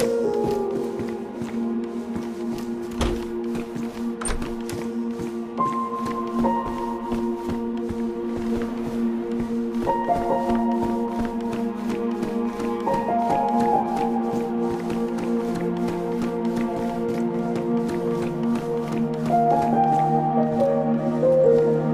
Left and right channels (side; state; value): both; identical; correlation 1.00